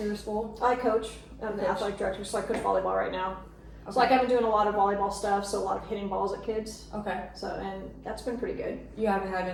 your school? I coach. I'm the Coach. athletic director, so I coach volleyball right now. Okay. So like I've been doing a lot of volleyball stuff, so a lot of hitting balls at kids. Okay. So and that's been pretty good. You haven't had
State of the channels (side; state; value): both; identical; correlation 1.00